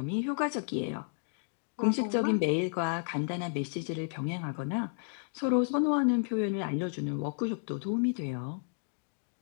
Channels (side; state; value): right; silent; digital silence